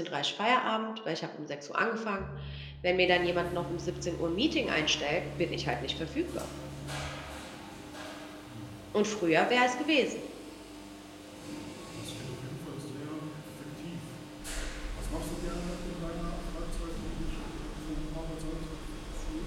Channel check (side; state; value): both; identical; correlation 1.00